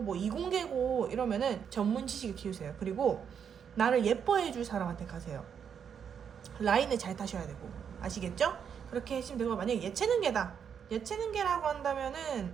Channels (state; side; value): quieter; left; 7.6 dB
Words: 뭐 이공계고 이러면은 전문 지식을 키우세요. 그리고 나를 예뻐해 줄 사람한테 가세요. 라인을 잘 타셔야 되고, 아시겠죠? 그렇게 하시면 되고, 만약에 예체능계다, 예체능계라고